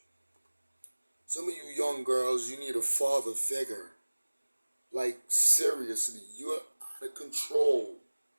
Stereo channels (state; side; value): inverted; both; correlation -1.00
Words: Some of you young girls, you need a father figure. Like, seriously, you're out of control.